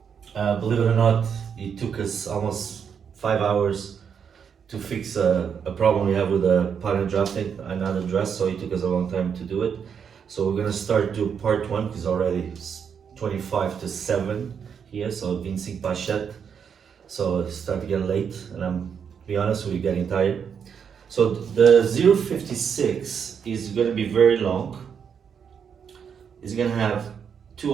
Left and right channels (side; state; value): left; quieter; 7.2 dB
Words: Believe it or not, it took us almost 5 hours to fix a problem we have with the pattern drafting another dress. So it took us a long time to do it. So we're gonna start do part one because already it's 25 to 7 here. So Vincent Pachet. So it's starting to get late, and I'm to be honest, we're getting tired. So the 056 is gonna be very long. It's gonna have two